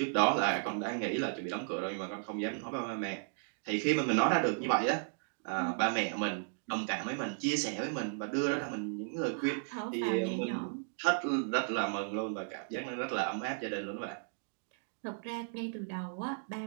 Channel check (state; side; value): silent; left; digital silence